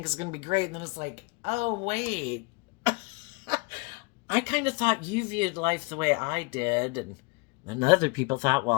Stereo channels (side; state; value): right; quieter; 28.5 dB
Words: is going to be great. And then it's like, oh, wait. I kind of thought you viewed life the way I did. And other people thought,